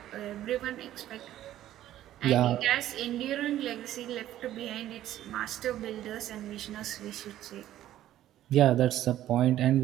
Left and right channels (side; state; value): left; quieter; 13.0 dB